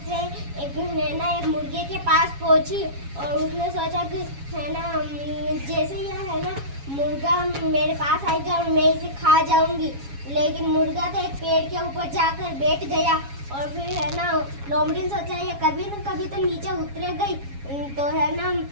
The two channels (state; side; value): late; left; 7.2 ms